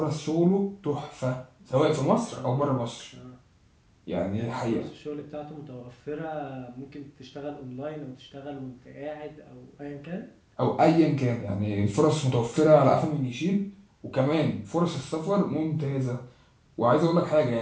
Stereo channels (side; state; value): both; identical; correlation 1.00